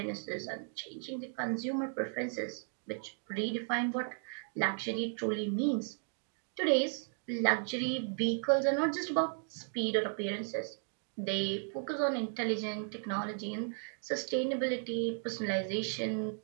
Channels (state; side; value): silent; left; 54 dB below the other